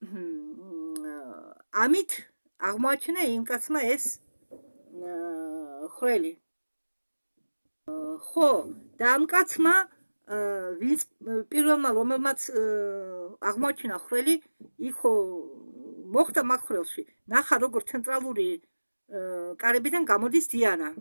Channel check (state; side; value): inverted; both; correlation -1.00